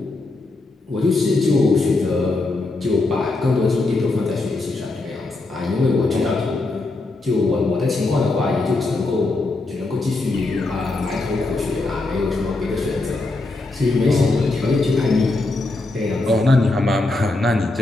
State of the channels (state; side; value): quieter; right; 3.2 dB